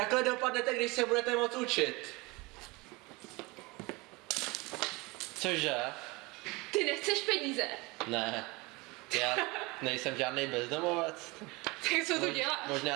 dopadnete, když se budete moc učit. Cože? Ty nechceš peníze? Ne, já nejsem žádný bezdomovec. Tak co tu děláš?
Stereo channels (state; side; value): quieter; left; 24.6 dB